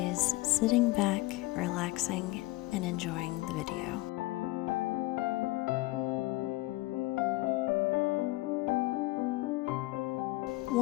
sitting back, relaxing, and enjoying the video.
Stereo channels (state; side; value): quieter; right; 20.1 dB